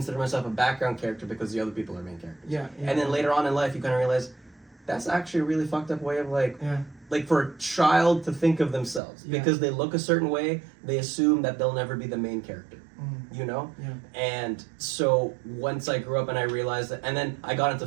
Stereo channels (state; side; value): drops out; left; at 9.0 s